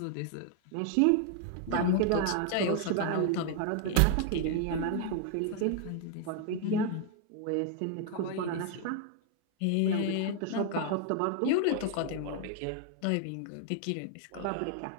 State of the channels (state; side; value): different; both; correlation 0.00